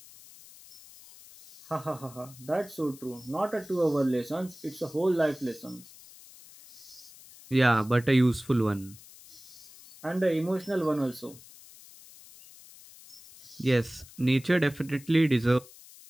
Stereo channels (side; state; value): left; noise; hiss, 21 dB below the sound